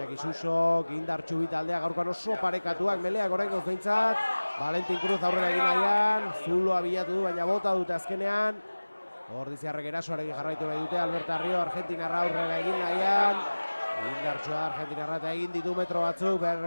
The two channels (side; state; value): both; inverted; correlation -1.00